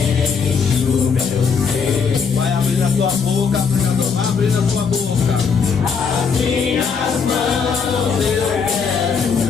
o meu ser. Vai abrindo a tua boca, pregador, vai abrindo a tua boca. As minhas mãos eu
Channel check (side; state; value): right; quieter; 5.9 dB